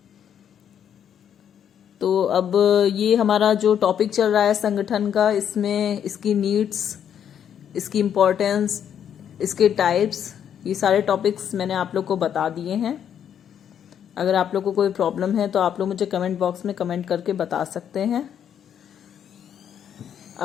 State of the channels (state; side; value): quieter; right; 8.9 dB